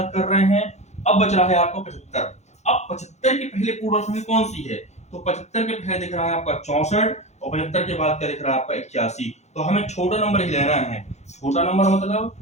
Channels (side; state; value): right; late; 0.33 ms